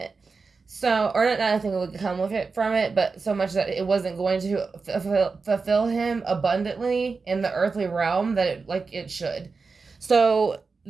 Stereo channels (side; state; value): left; quieter; 4.5 dB